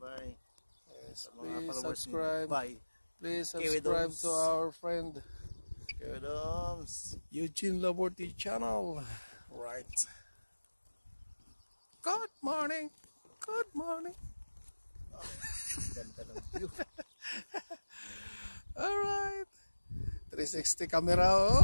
Yes, please subscribe. Please Kiwi subscribe Domes. to our friend Kiwi Domes. Eugene Laborty channel. Right. Good morning. Good morning. Ganda ng view. Alright. 360 camera.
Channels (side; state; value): both; inverted; correlation -1.00